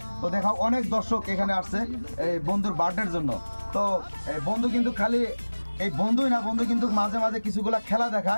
তো দেখাও অনেক দর্শক এখানে আসছে এই বন্ধুর বার্থডের জন্য। তো বন্ধু কিন্তু খালি এই বন্ধুই না, বন্ধু কিন্তু মাঝে মাঝে কিছুগুলা খেলা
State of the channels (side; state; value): both; inverted; correlation -1.00